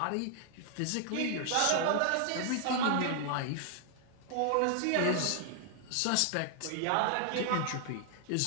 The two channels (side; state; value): both; different; correlation 0.00